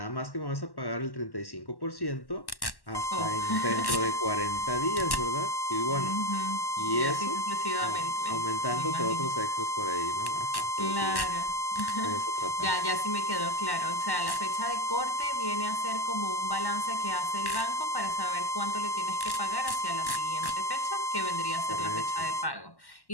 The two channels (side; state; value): right; late; 1.1 ms